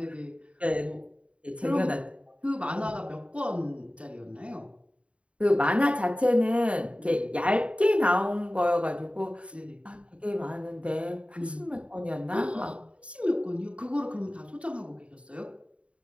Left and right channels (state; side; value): late; left; 0.062 ms